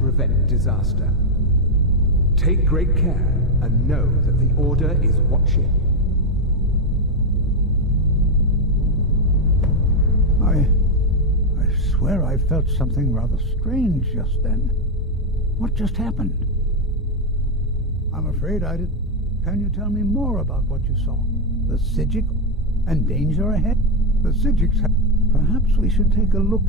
disaster. Take great care, and know that the Order is watching. I swear I felt something rather strange just then. What just happened? I'm afraid I did. Can you tell me more about what you saw? The Psijic and danger ahead? The Psijics have... Perhaps we should take a look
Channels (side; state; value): both; normal; correlation 0.04